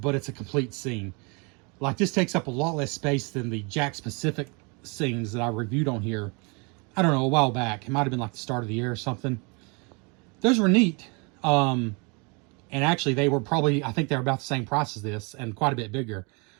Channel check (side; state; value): left; quieter; 31.3 dB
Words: it's a complete scene. Like this takes up a lot less space than the Jack specific scenes that I reviewed on here. I don't know, a while back. It might have been like the start of the year or something. Those were neat. And actually, they were probably, I think they're about the same price as this and quite a bit bigger.